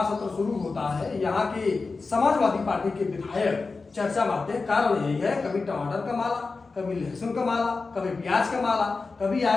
सत्र शुरू होता है, यहाँ के समाजवादी पार्टी के विधायक चर्चा में आते हैं। कारण यही है, कभी टमाटर का माला, कभी लहसुन का माला, कभी प्याज का माला, कभी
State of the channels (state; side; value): quieter; right; 4.1 dB